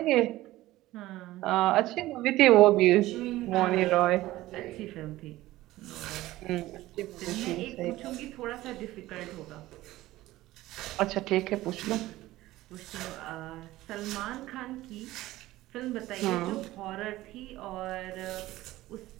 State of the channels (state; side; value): quieter; left; 16.7 dB